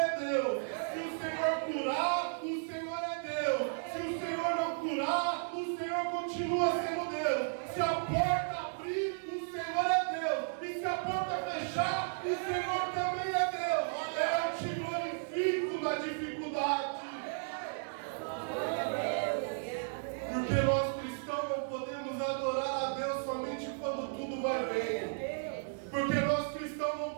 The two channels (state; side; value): silent; left; digital silence